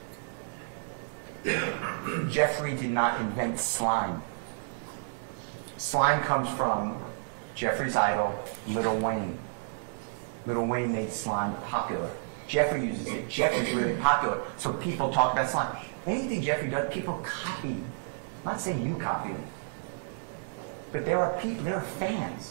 Jeffrey did not invent slime. Slime comes from Jeffrey's idol, Lil Wayne. Lil Wayne made slime popular. Jeffrey uses it. Jeffrey's really popular, so people talk about slime. Anything Jeffrey does, people copy. I'm not saying you copy him, but there are people, there are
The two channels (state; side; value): silent; left; digital silence